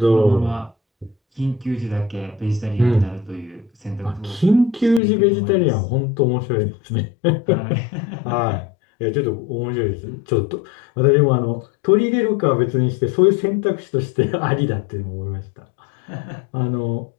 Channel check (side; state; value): right; drops out; at 5.0 s